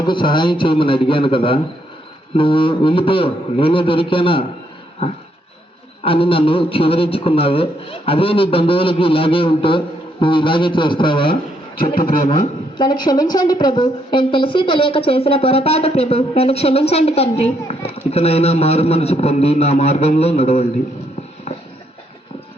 సహాయం చేయమని అడిగాను కదా, నువ్వు వెళ్ళిపో, నేనే దొరికానా అని నన్ను చివరించుకున్నావే. అదే నీ బంధువులకి ఇలాగే ఉంటే నువ్వు ఇలాగే చేస్తావా? చెప్పు ప్రేమ. నన్ను క్షమించండి ప్రభు, నేను తెలిసి తెలియక చేసిన పొరపాటు ప్రభు, నన్ను క్షమించండి తండ్రి. ఇకనైనా మారు మనసు పొంది నా మార్గంలో నడవండి.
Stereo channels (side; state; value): both; normal; correlation 0.74